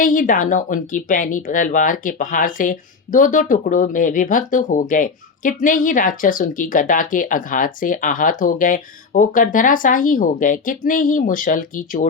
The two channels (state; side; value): quieter; right; 4.8 dB